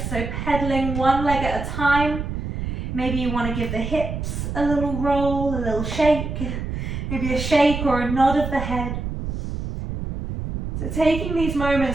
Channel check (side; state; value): right; noise; rumble, 5 dB below the sound